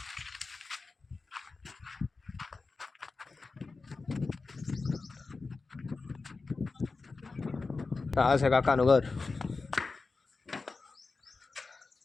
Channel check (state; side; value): quieter; right; 4.0 dB